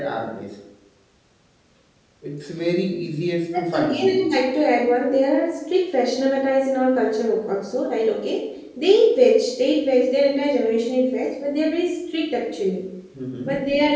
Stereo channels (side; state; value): both; identical; correlation 1.00